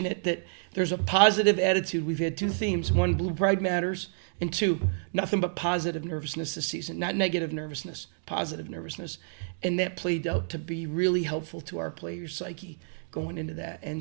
that there's a positive attitude. We've had two themes. One, Blue Pride matters. And two, nothing but positive nervousness this season. Not negative nervousness, positive nervousness. And that played out to be really helpful to our players' psyche going into that.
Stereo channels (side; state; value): left; silent; digital silence